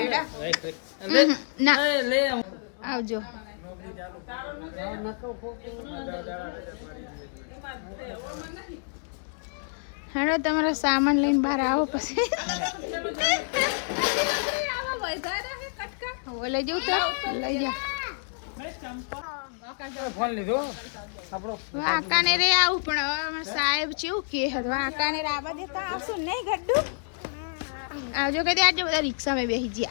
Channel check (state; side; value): silent; right; digital silence